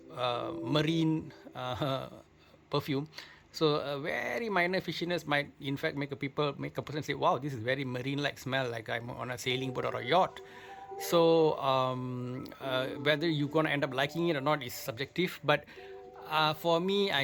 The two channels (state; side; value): identical; both; correlation 1.00